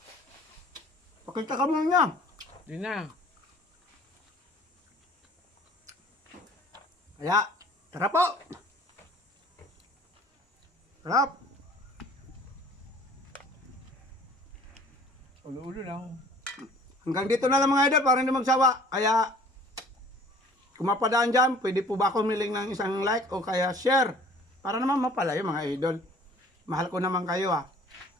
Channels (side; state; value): both; normal; correlation 0.51